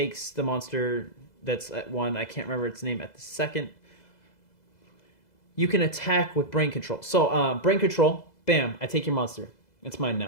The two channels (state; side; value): late; right; 2.0 ms